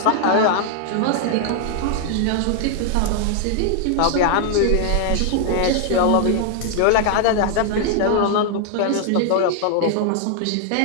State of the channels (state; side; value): different; both; correlation 0.00